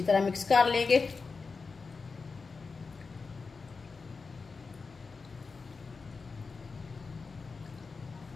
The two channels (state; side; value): quieter; right; 4.5 dB